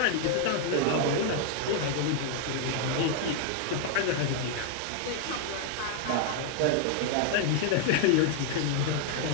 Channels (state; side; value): different; both; correlation 0.00